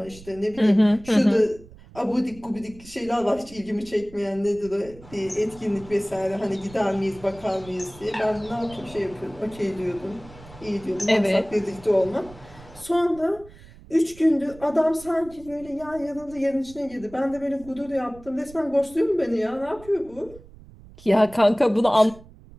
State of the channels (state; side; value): noise; right; rumble, 21 dB below the sound